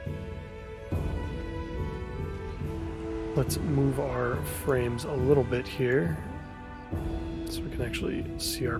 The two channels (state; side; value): identical; both; correlation 1.00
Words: Let's move our frames a little bit here so we can actually see